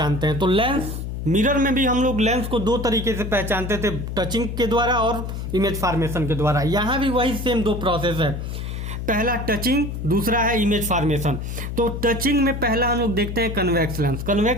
हैं, तो लेंस, मिरर में भी हम लोग लेंस को दो तरीके से पहचानते थे, टचिंग के द्वारा और इमेज फॉर्मेशन के द्वारा। यहां भी वही सेम दो प्रोसेस है, पहला टचिंग, दूसरा है इमेज फॉर्मेशन। तो टचिंग में पहला हम लोग देखते हैं कन्वेक्स लेंस।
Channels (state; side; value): noise; left; hum, 5 dB below the sound